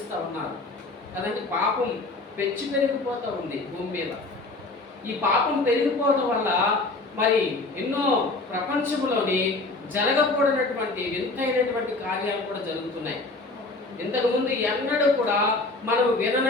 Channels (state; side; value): quieter; right; 3.2 dB